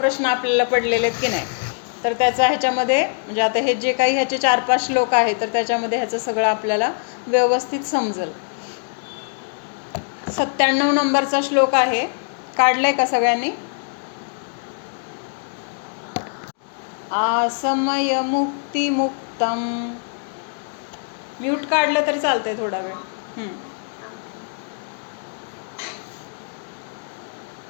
आपल्याला पडलेले आहेत की नाही. तर त्याचा ह्याच्यामध्ये म्हणजे आता हे जे काही ह्याचे 4-5 श्लोक आहेत तर त्याच्यामध्ये ह्याचं सगळं आपल्याला व्यवस्थित समजेल. 97 नंबरचा श्लोक आहे, काढलाय का सगळ्यांनी? आसमय मुक्ती मुक्तम. म्यूट काढलं तर चालतंय थोडा वेळ.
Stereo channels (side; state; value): right; silent; 64 dB below the other